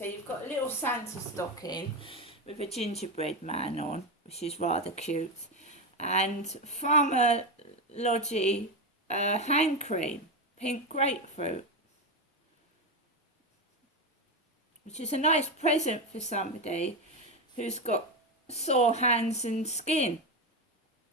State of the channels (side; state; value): both; normal; correlation 0.13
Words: you've got a little Santa stocking with a gingerbread man on, which is rather cute. And Farmer Lodgy hand cream, pink grapefruit, which is a nice present for somebody who's got sore hands and skin.